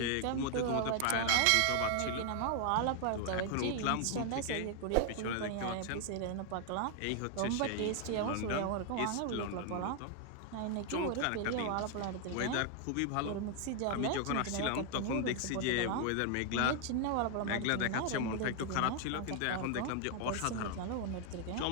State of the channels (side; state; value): both; different; correlation 0.00